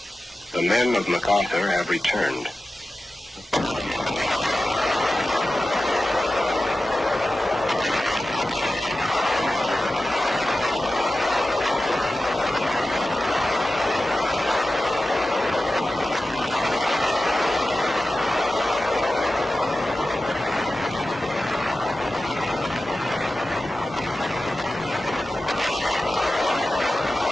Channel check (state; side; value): normal; both; correlation 0.94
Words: The men of MacArthur have returned.